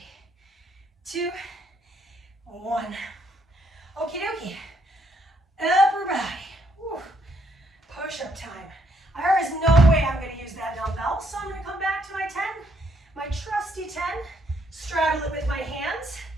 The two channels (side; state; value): both; normal; correlation 0.71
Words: 2, 1. Okie dokie. Upper body. Whew. Push-up time. There is no way I'm going to use that dumbbell, so I'm going to come back to my 10, my trusty 10, straddle it with my hands,